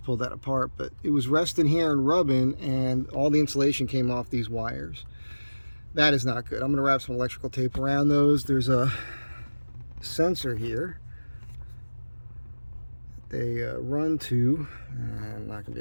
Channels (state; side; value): inverted; both; correlation -1.00